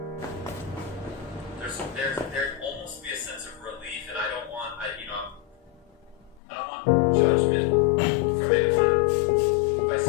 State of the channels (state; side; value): drops out; right; at 6.4 s